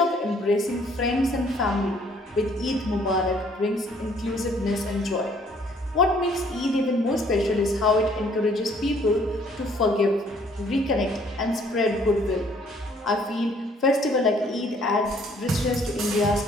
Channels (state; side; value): normal; both; correlation 0.61